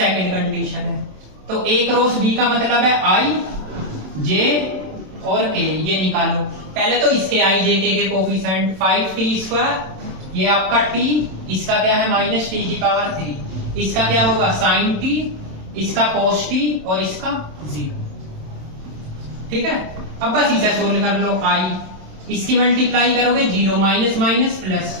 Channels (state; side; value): late; left; 27 ms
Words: कंडीशन है। तो a क्रॉस b का मतलब है i j और k, ये निकालो। पहले तो इसके i j k के कोफिशिएंट 5t², ये आपका t, इसका क्या है माइनस टी की पावर 3, इसका क्या होगा sin t, इसका cos t और इसका 0। ठीक है, अब बस इसे सोल्व कर लो, i, इसकी मल्टीप्लाई करोगे 0 minus minus plus